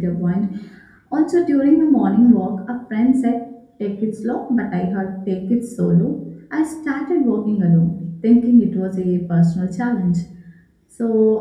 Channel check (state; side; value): identical; both; correlation 1.00